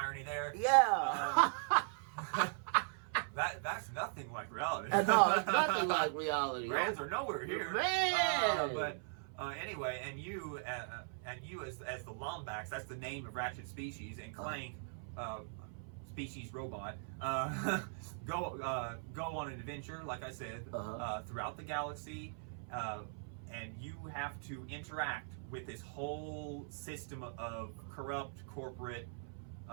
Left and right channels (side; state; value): left; silent; 51 dB below the other